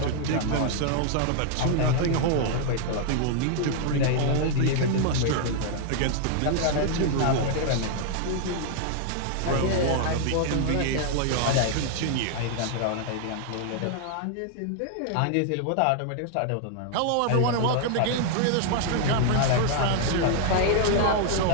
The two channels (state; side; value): different; both; correlation 0.00